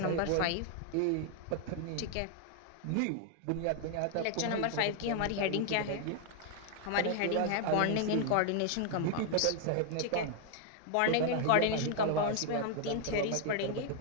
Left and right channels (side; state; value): both; different; correlation 0.00